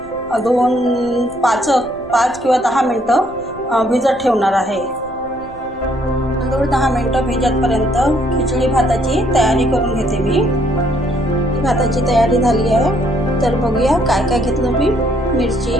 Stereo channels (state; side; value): noise; left; rumble, 21 dB below the sound